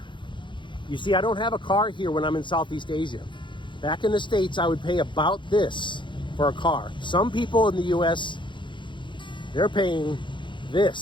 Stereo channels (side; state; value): right; late; 0.23 ms